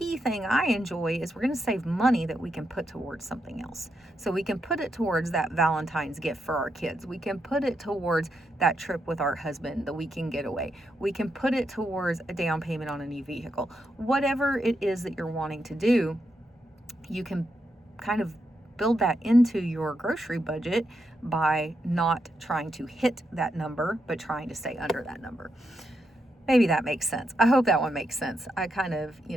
thing I enjoy is we're going to save money that we can put towards something else. So we can put it towards that Valentine's gift for our kids. We can put it towards that trip with our husband, the weekend getaway. We can put it towards a down payment on a new vehicle. Whatever it is that you're wanting to do, you can kind of build that into your grocery budget by not trying to hit that number, but trying to stay under that number. Maybe that makes sense. I hope that one makes sense. I kind of,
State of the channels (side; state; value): both; normal; correlation 0.83